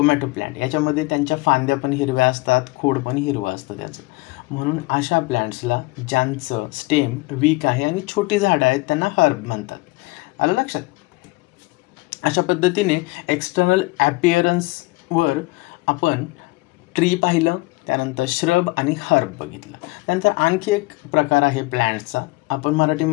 प्लांट याच्यामध्ये त्यांच्या फांद्या पण हिरव्या असतात, खोड पण हिरवं असतं त्याचं. म्हणून अशा प्लांट्सला ज्यांचं स्टेम वीक आहे आणि छोटी झाडं आहेत त्यांना हर्ब म्हणतात. आलं लक्षात? अशा पद्धतीने एक्सटर्नल ॲपिअरन्सवर आपण ट्री पाहिलं, त्यानंतर श्रब आणि हर्ब बघितलं. त्यानंतर आणखी एक प्रकार आहे प्लॅन्ट्सचा, आपण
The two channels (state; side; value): quieter; right; 22.9 dB